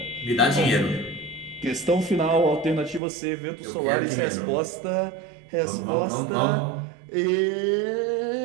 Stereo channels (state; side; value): drops out; left; at 3.0 s